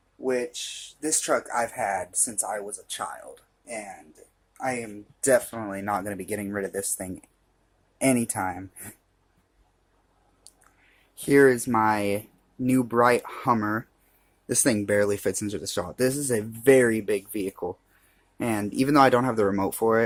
which this truck I've had since I was a child, and I am definitely not going to be getting rid of this thing anytime. Here is my new bright Hummer. This thing barely fits into the shop. This is a very big vehicle, and even though I don't have the remote for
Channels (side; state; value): both; identical; correlation 1.00